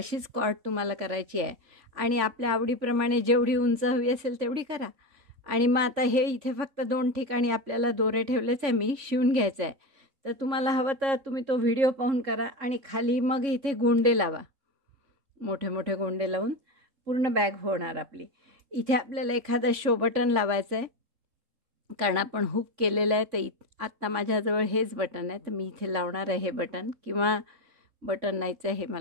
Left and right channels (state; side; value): late; left; 3.5 ms